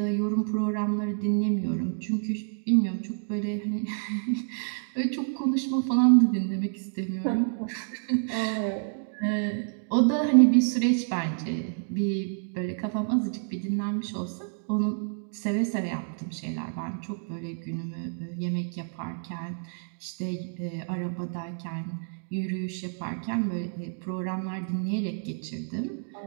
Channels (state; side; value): silent; left; digital silence